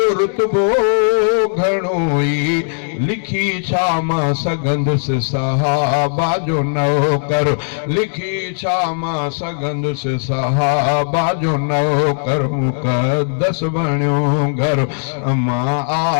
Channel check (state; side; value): silent; right; digital silence